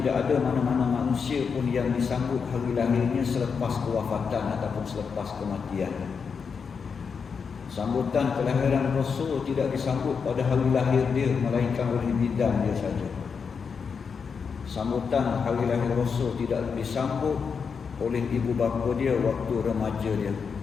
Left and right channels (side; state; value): right; quieter; 5.9 dB